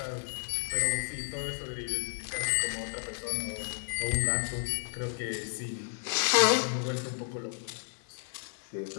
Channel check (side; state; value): right; silent; digital silence